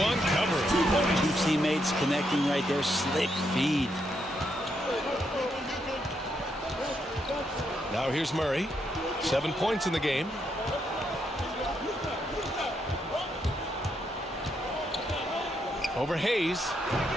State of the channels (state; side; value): normal; both; correlation 0.79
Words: covering. 2 teammates connecting right there. Slick feed. Now here's Murray. 7 points in the game. Over Hayes.